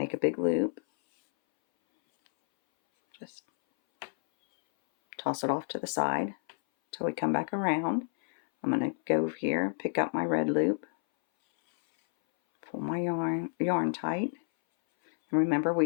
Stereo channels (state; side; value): silent; right; 58 dB below the other